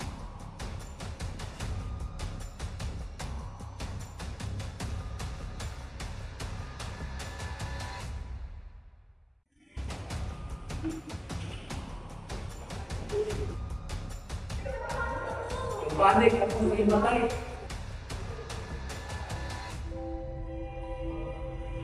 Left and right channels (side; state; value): both; identical; correlation 1.00